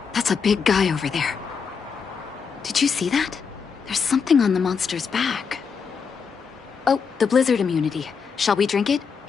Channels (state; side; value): quieter; right; 6.0 dB